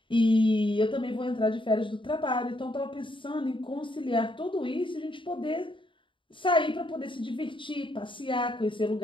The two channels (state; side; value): late; right; 0.24 ms